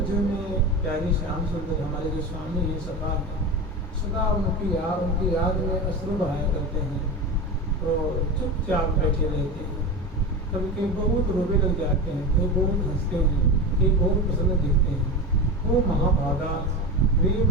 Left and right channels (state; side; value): normal; both; correlation 0.24